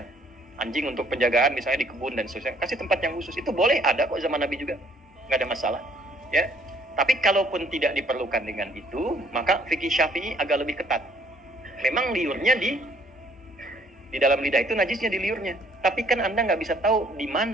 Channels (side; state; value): both; normal; correlation 0.61